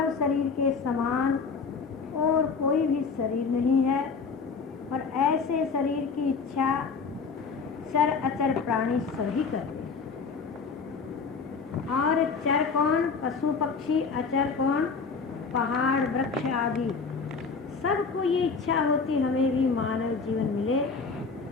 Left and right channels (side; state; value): right; quieter; 5.0 dB